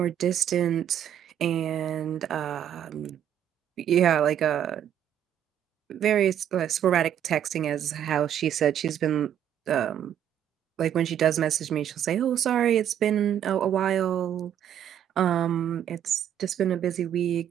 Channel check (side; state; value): left; quieter; 9.9 dB